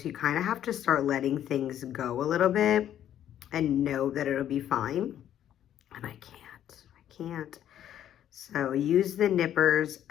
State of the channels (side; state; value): right; quieter; 10.9 dB